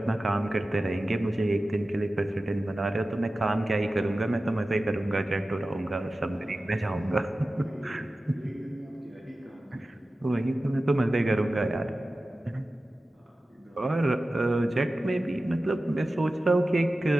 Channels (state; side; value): normal; both; correlation 0.95